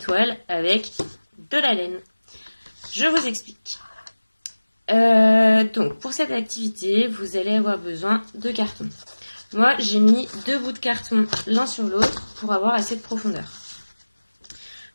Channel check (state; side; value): inverted; both; correlation -1.00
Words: avec de la laine. Je vous explique. Donc, pour cette activité, vous allez avoir besoin de carton. Moi, j'ai mis 2 bouts de carton l'un sur l'autre pour avoir assez de profondeur.